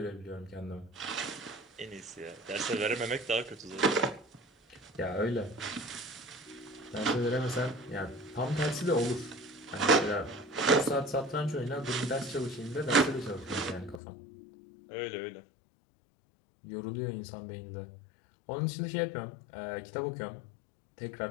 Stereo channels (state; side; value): drops out; right; at 14.0 s